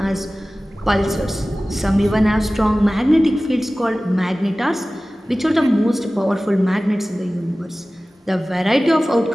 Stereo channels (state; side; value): normal; both; correlation 0.97